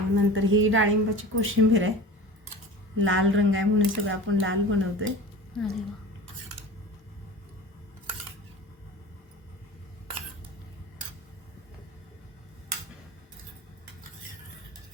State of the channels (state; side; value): normal; both; correlation 0.35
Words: नंतर ही डाळिंबाची कोशिंबीर आहे. लाल रंग आहे म्हणून सगळं आपण लाल बनवतोय. अरे वा.